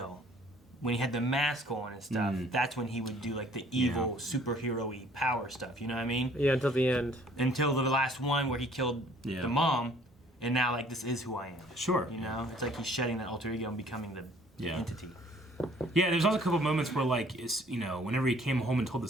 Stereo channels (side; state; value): both; normal; correlation 0.57